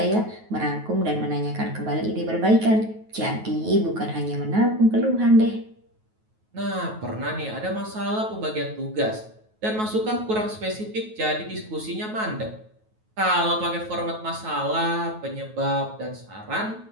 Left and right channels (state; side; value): late; left; 9.3 ms